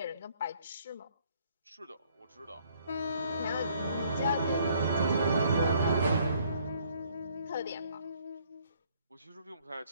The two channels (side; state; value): both; inverted; correlation -0.63